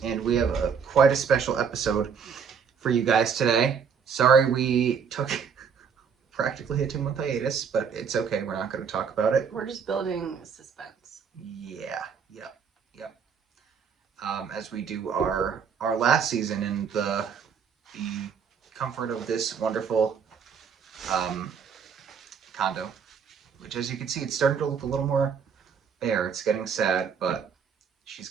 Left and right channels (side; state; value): left; quieter; 6.7 dB